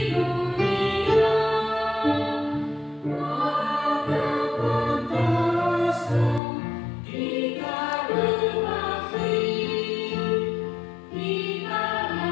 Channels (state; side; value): drops out; right; at 6.4 s